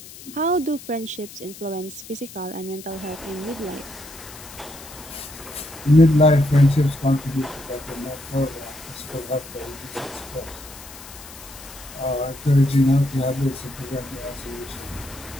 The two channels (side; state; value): left; noise; hiss, 16 dB below the sound